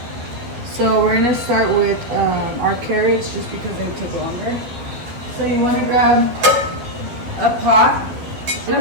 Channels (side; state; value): left; late; 12 ms